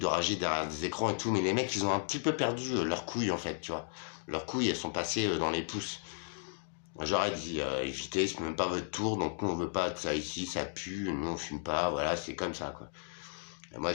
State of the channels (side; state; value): right; silent; digital silence